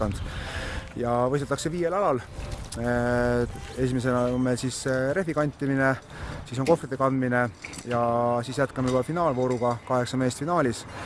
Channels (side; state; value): both; identical; correlation 1.00